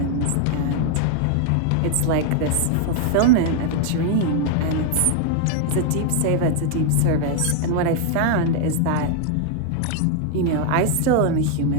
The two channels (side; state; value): both; different; correlation 0.00